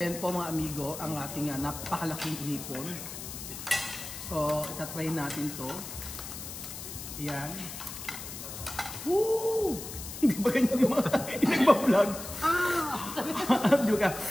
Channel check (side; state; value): left; noise; hiss, 10 dB below the sound